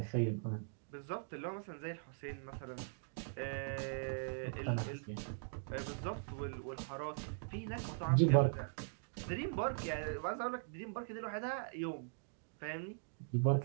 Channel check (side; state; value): left; silent; digital silence